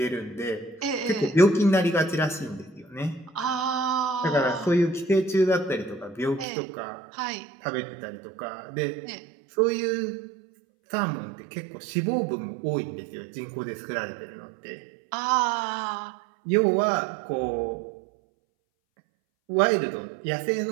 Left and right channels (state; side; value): drops out; left; at 6.5 s